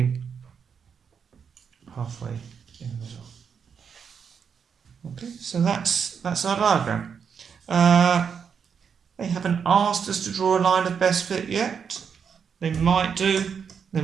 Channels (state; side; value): quieter; left; 6.8 dB